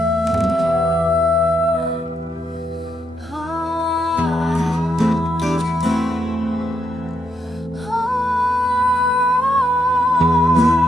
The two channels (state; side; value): normal; both; correlation 0.80